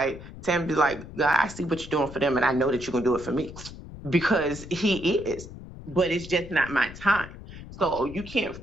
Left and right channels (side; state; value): left; noise; rumble, 14 dB below the sound